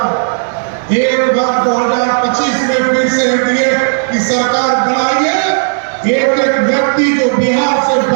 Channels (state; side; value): silent; left; digital silence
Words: एक बार 2025 में फिर से एनडीए की सरकार बनाइए। एक एक व्यक्ति जो बिहार से